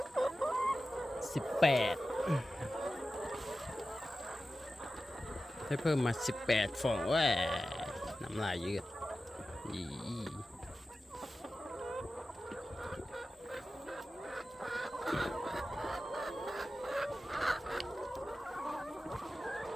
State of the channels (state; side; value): normal; both; correlation 0.94